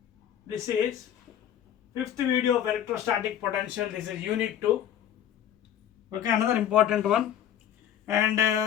This is fifth video of electrostatic potential. This is unit 2. Okay, another important one. And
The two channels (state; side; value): quieter; right; 10.2 dB